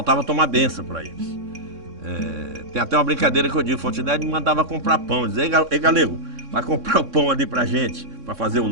tomar benção para eles. Tem até uma brincadeira que eu digo, Fontinelli me mandava comprar pão, dizer, ei galego, vai comprar o pão ali pra gente, para fazer o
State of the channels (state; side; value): late; left; 3.6 ms